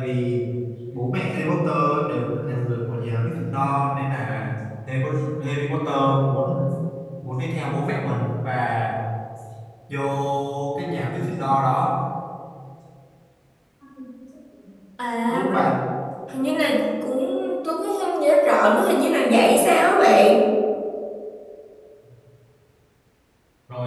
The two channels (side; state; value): both; identical; correlation 1.00